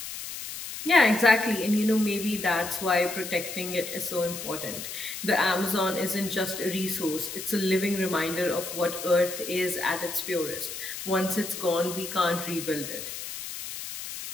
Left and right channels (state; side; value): noise; left; hiss, 8 dB below the sound